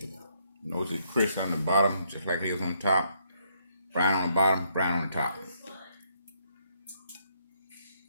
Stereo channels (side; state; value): both; inverted; correlation -0.73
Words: Notice it's crisp on the bottom, just like it was on top. Brown on the bottom, brown on the top.